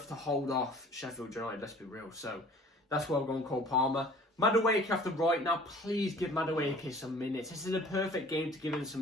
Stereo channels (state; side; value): normal; both; correlation 0.49